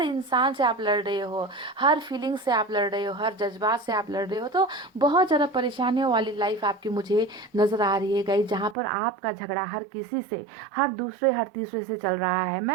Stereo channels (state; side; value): drops out; left; at 8.8 s